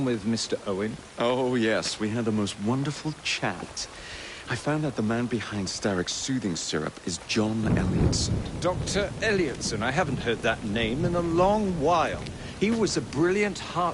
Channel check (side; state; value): both; identical; correlation 1.00